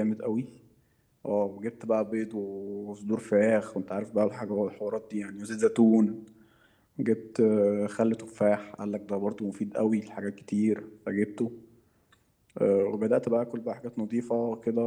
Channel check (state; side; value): identical; both; correlation 1.00